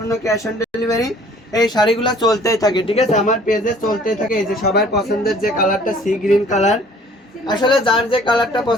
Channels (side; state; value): both; normal; correlation 0.54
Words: ক্যাশ অন ডেলিভারি। এই শাড়িগুলো চলতেই থাকে, ঠিক আছে, আমার পেজে চলতেই থাকে। এই যে সবার পছন্দের যে কালারটা সি গ্রিন কালার, আসলে যার যে কালারটা